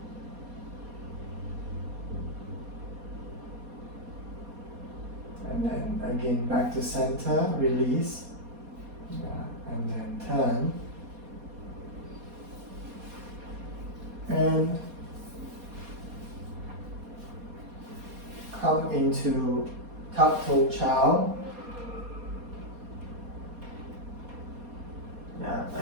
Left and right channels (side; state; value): left; late; 4.2 ms